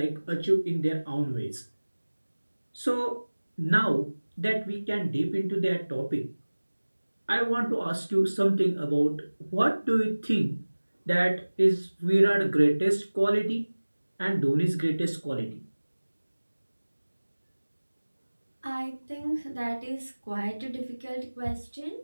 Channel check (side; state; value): both; inverted; correlation -1.00